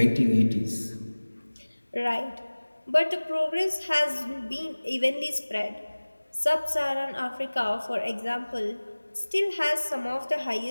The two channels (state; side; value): inverted; both; correlation -1.00